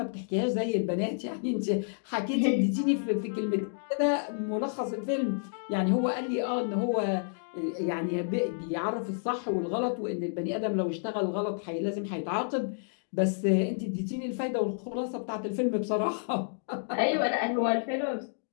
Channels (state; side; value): silent; right; digital silence